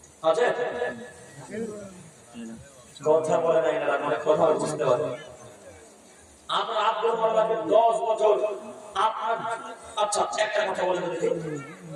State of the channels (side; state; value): both; identical; correlation 1.00